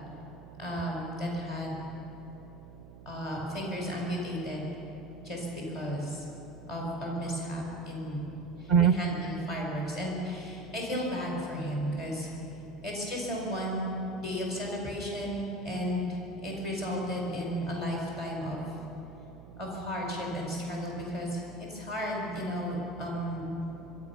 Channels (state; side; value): noise; right; hum, 17 dB below the sound